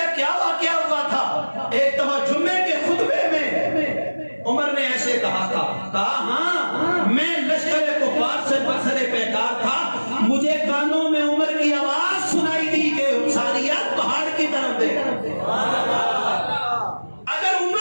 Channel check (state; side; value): inverted; both; correlation -1.00